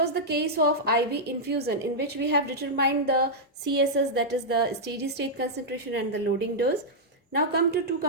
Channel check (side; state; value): both; normal; correlation -0.07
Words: the case of IV infusion in which we have determined the CSS, that is the steady state concentration, and the loading dose. Now come to two